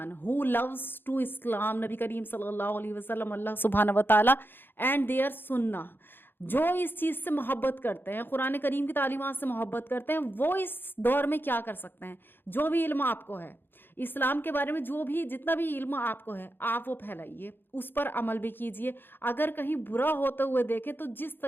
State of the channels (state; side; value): late; right; 0.099 ms